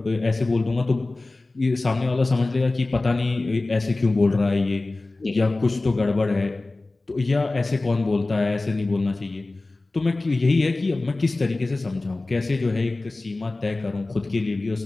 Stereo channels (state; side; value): quieter; right; 3.1 dB